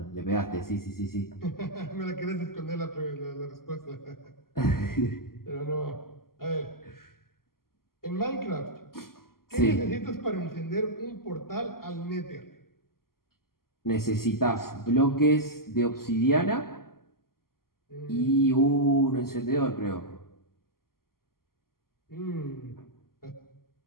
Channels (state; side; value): late; right; 0.92 ms